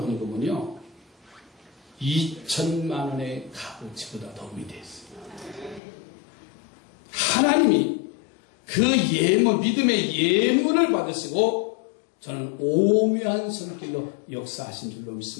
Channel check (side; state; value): right; drops out; at 5.8 s